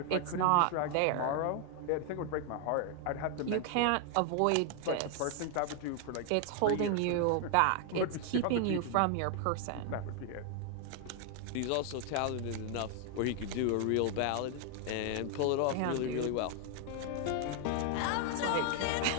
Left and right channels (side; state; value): both; different; correlation 0.00